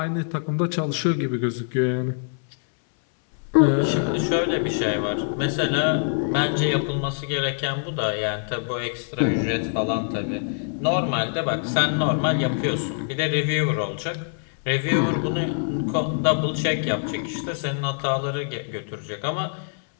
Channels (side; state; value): right; silent; 62 dB below the other